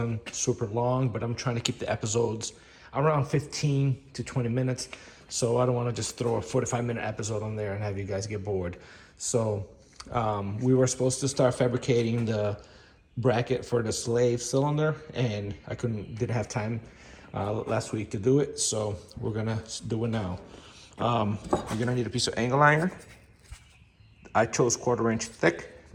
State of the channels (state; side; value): identical; both; correlation 1.00